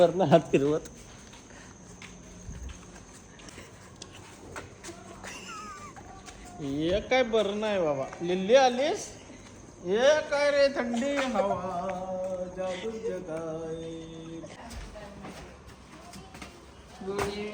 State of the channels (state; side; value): identical; both; correlation 1.00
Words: हात फिरवत. हे काय बरं नाही बाबा. लिल्ली आलीस. हे काय रे थंडी हवा जादू जगाय. Good